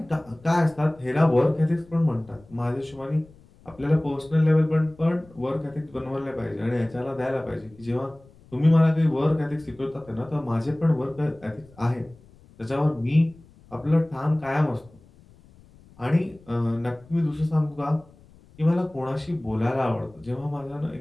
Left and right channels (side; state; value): left; noise; rumble, 26 dB below the sound